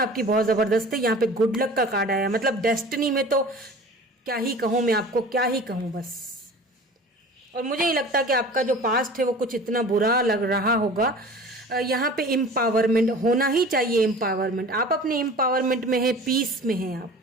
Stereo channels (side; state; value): both; normal; correlation 0.41